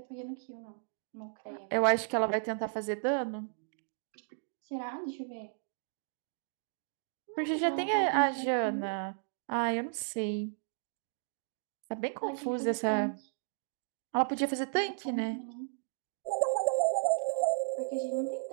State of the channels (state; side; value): silent; left; digital silence